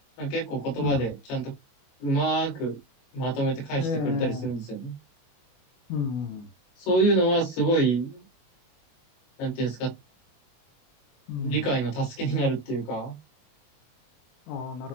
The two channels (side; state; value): right; late; 24 ms